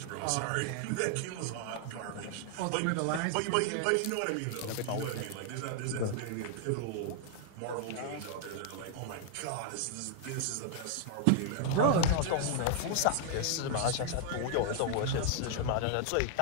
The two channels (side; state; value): both; different; correlation 0.00